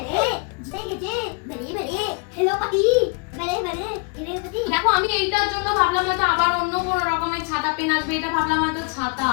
দেখো আমি এইটার জন্য ভাবলাম হয়তো আবার অন্য কোনো রকমের ছাতা পেন আসবে, এটা ভাবলাম হয়তো ছাতা।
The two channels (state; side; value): quieter; right; 34.6 dB